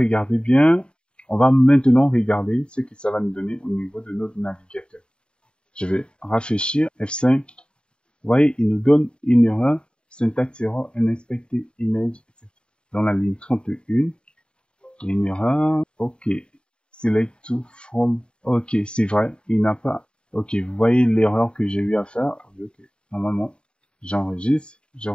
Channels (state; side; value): late; right; 0.052 ms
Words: bien, on va maintenant regarder ce que ça va nous donner au niveau de notre navigateur. Je vais rafraîchir F5. Vous voyez, il nous donne une erreur, syntax error, unexpected image, etc. Dans la ligne 31, une erreur, ok, select to from, ok, c'est vrai, il n'a pas, ok, vous voyez l'erreur que j'ai eu à faire, ok, normalement, j'enregistre, je